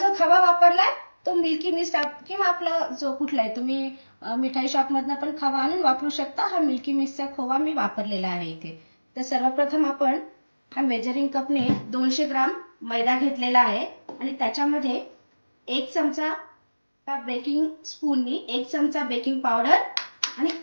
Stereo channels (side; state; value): both; inverted; correlation -1.00